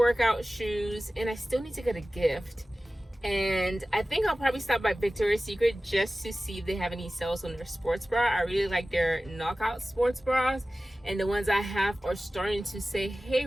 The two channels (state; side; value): normal; both; correlation 0.96